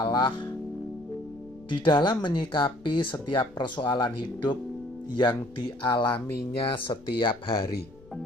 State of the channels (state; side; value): noise; left; rumble, 24 dB below the sound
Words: di dalam menyikapi setiap persoalan hidup yang dialaminya setiap hari.